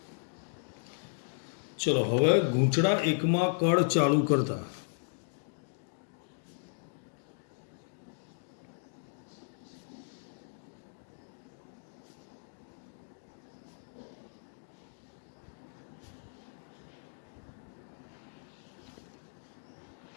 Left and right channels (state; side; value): silent; right; digital silence